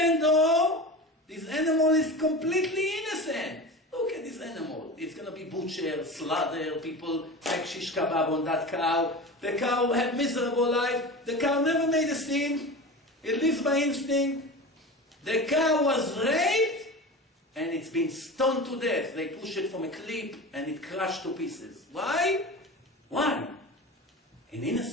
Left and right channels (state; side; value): normal; both; correlation 0.31